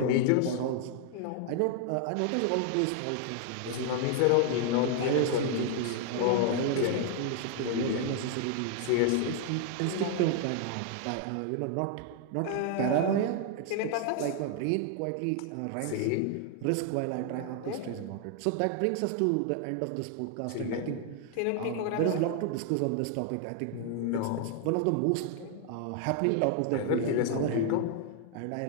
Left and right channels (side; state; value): both; different; correlation 0.00